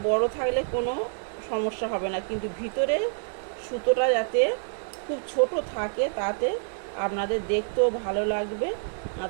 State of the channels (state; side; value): silent; left; digital silence